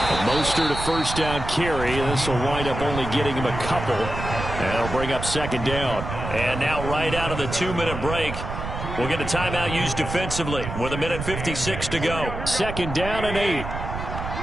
Mostert a 1st down carry. This will wind up only getting him a couple. And it'll bring up 2nd down. And now right out of the 2-minute break, we'll get a timeout used defensively with 1:56 to go. 2nd down and 8.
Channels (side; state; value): right; noise; rumble, 6 dB below the sound